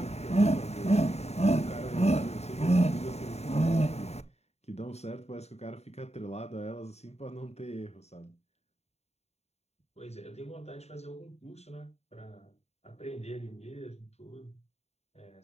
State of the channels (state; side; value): late; right; 0.31 ms